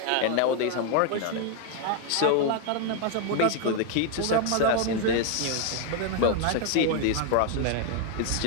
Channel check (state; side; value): different; both; correlation 0.00